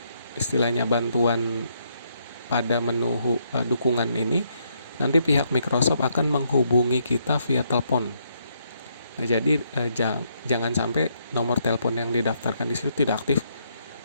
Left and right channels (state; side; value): inverted; both; correlation -0.75